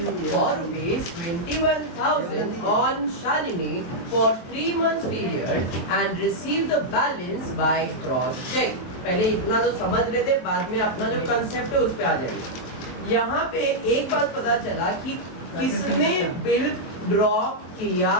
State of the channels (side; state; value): right; late; 23 ms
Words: for rupees 21,000 on Shalini for 3 months period and receive the balance by cross check. पहले इतना तो समझ लेते, बाद में अपना जो कंसेप्ट है उस पे आ जाएंगे। यहाँ पे एक बात पता चला कि किसने बिल ड्रॉ किया